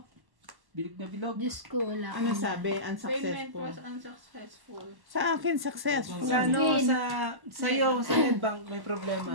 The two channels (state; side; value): late; left; 1.1 ms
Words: bilog na bilog. Diyos ko, wala. Ano sabi? Payment Unsuccessful. was unsuccessful. Sa akin, successful. Sa ano, sa'yo, sa Netbank may problema.